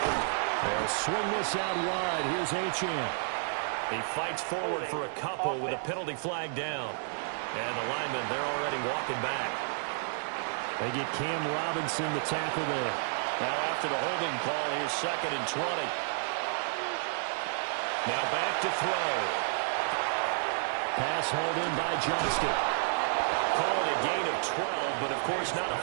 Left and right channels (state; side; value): silent; left; digital silence